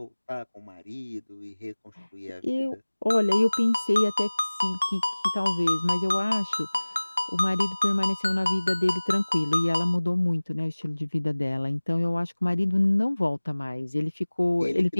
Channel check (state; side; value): inverted; both; correlation -1.00